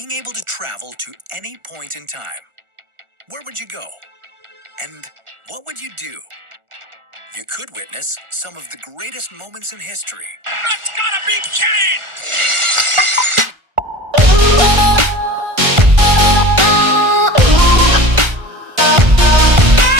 able to travel to any point in time. Where would you go? And what would you do? You could witness some of the greatest moments in history. That's gotta be kidding!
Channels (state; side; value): late; left; 1.4 ms